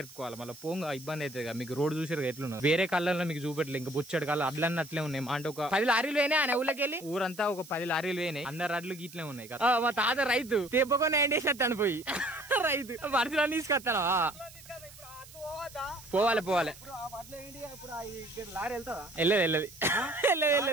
మళ్ళీ పోంగా ఇబ్బంది అవుతుంది. మీకు రోడ్ చూసారు ఎట్లున్నా వేరే కళ్ళల్లో మీకు చూపెట్టలేదు. ఇంకా బొచ్చడు కళ్ళు అడ్లన్నీ అట్లే ఉన్నాయి. అంటే ఒక 10 లారీలు పోయినాయి ఆయన ఊళ్ళకి వెళ్ళి. ఊరంతా ఒక 10 లారీలు పోయినాయి. అందరు అడ్లు ఇట్లే ఉన్నాయి కదా. మా తాత రైతు తెప్పకొని ఎండేసేస్తాను పోయి రైతు వర్షాలు తీసుకొస్తాను. పోవాలి వెళ్ళదు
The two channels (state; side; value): noise; right; hiss, 19 dB below the sound